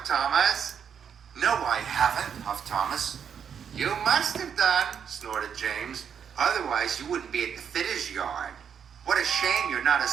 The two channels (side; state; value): left; quieter; 7.7 dB